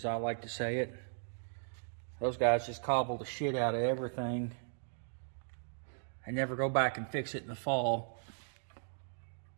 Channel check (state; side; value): silent; left; digital silence